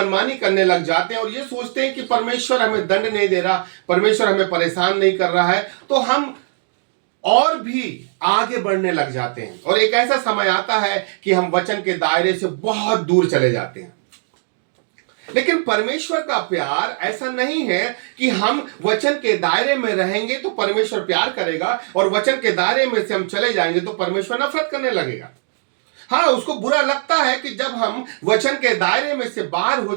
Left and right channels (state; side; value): silent; left; 66 dB below the other